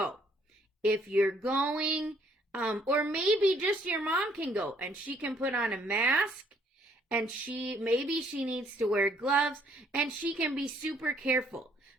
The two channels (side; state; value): both; normal; correlation 0.65